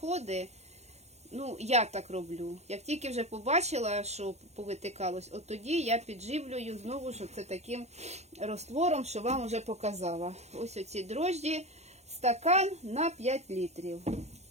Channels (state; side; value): late; left; 0.32 ms